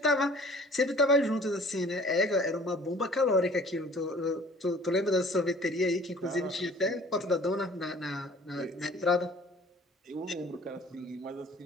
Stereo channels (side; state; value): both; normal; correlation 0.51